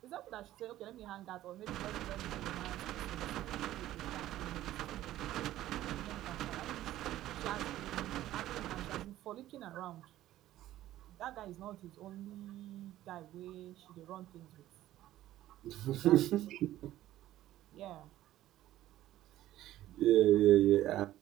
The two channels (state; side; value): quieter; left; 14.1 dB